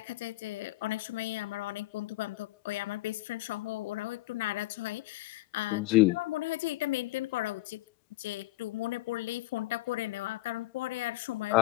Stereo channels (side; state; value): right; quieter; 18.4 dB